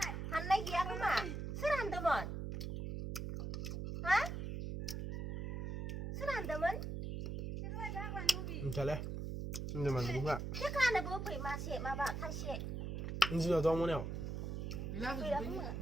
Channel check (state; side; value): noise; right; hum, 4 dB below the sound